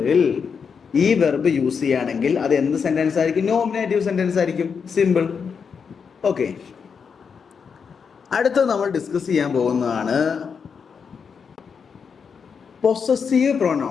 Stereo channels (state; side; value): quieter; right; 6.2 dB